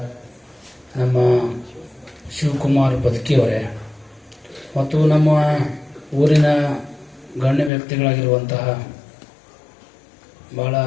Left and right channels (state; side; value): drops out; right; at 7.7 s